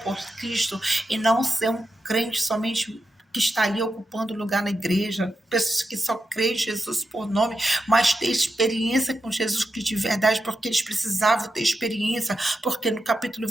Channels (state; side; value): normal; both; correlation 0.88